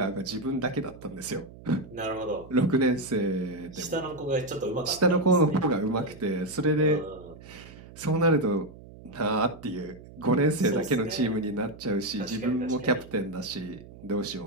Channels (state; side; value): noise; right; hum, 18 dB below the sound